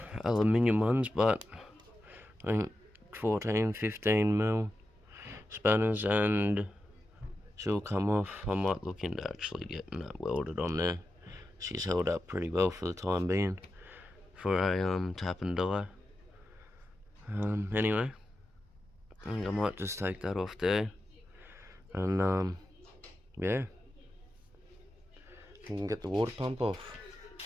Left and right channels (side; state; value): both; normal; correlation 0.90